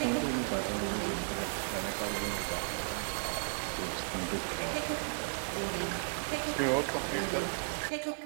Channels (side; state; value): left; silent; digital silence